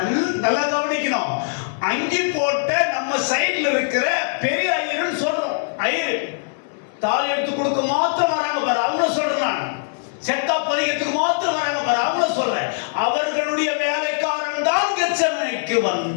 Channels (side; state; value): right; silent; 65 dB below the other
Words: நல்லா கவனிக்கணும். அங்கி போட்ட நம்ம சைடுல இருக்கிற பெரிய ஐயர்னு சொல்றோம். ஐயர் தாலி எடுத்து கொடுக்க மாத்திரம் வராங்க பாரு, அவங்கள சொல்றேன் நான். செத்தா பதிகத்துக்கு மாத்திரம் வராங்க பாரு, அவங்கள சொல்றேன். அவர்களுடைய வேலைக்காரன் தான் கெத்செமனேக்கு